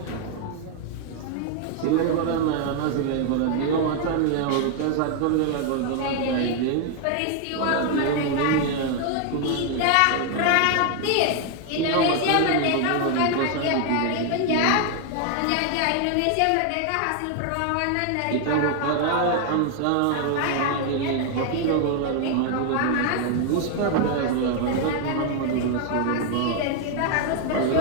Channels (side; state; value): both; different; correlation 0.00